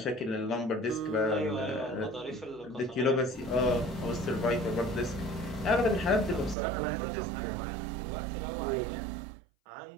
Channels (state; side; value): drops out; left; at 6.6 s